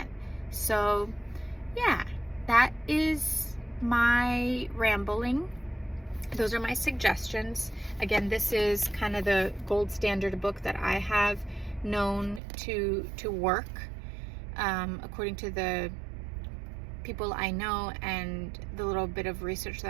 So yeah, that is my rambling. Those are my suggestions. Again, this is kind of the gold standard book that I have known to work according to the people I know and the little bit of research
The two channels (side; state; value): left; drops out; at 12.4 s